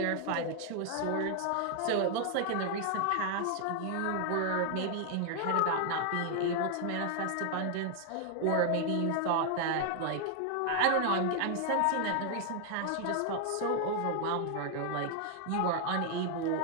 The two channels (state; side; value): different; both; correlation 0.00